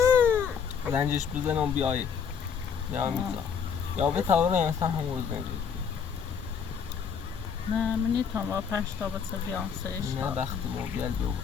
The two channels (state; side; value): quieter; right; 6.8 dB